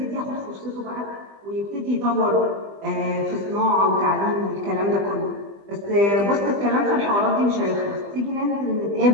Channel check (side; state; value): left; late; 20 ms